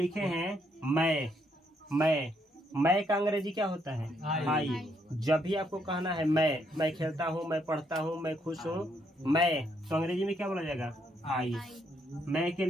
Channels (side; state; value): both; normal; correlation 0.74